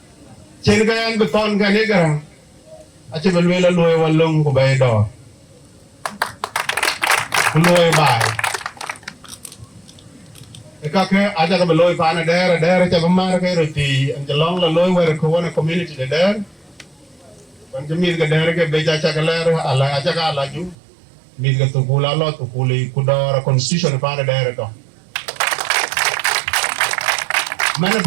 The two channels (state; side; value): drops out; left; at 20.8 s